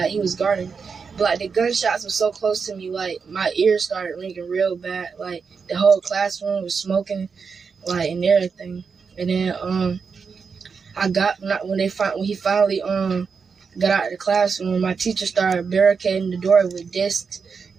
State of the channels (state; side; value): quieter; left; 5.6 dB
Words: he was guarding. But like the gunshots were so close to me, like my ears started ringing real bad. Like the whole classroom was smoking, like, and everything. And then when he finally got out of the classroom, my teacher started barricading the door with desks